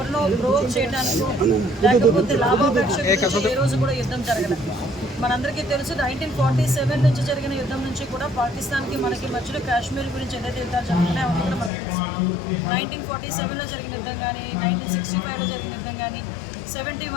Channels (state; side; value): drops out; right; at 11.7 s